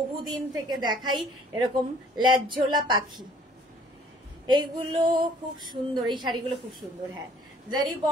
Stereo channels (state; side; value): normal; both; correlation 0.57